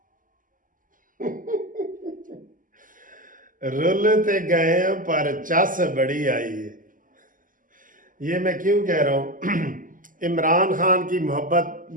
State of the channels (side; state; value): left; late; 0.39 ms